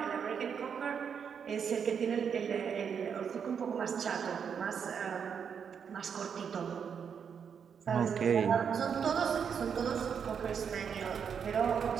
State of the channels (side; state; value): left; quieter; 7.1 dB